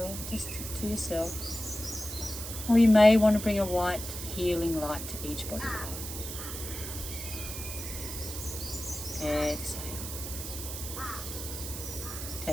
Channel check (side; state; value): right; noise; hiss, 7 dB below the sound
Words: yourself. Or you may want to bring a white healing light to each body part. Exhale.